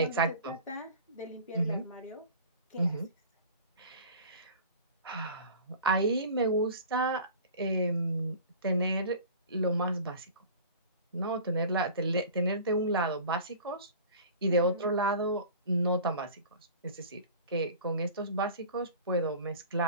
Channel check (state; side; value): inverted; both; correlation -0.41